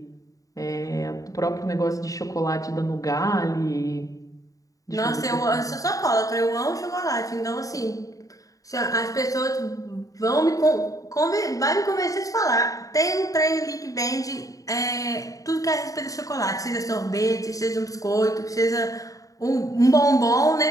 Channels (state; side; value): late; right; 0.16 ms